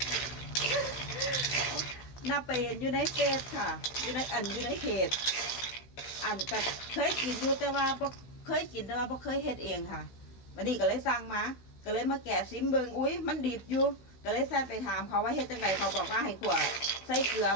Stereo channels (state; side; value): late; right; 16 ms